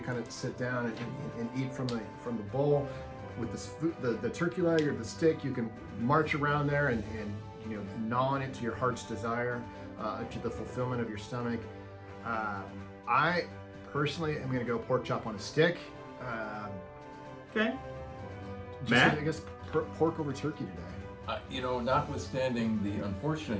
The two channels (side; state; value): both; identical; correlation 1.00